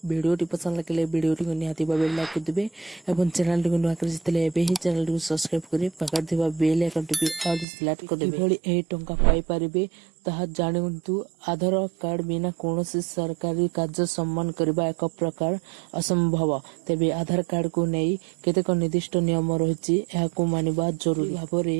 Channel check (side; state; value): left; drops out; at 7.7 s